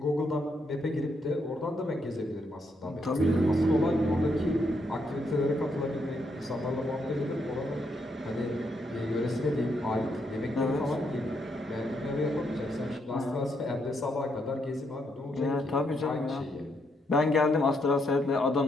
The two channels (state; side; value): normal; both; correlation 0.77